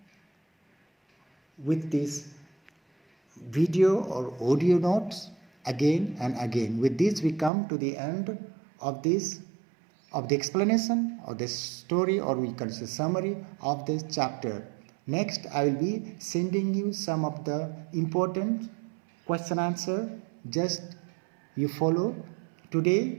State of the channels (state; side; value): drops out; left; at 7.5 s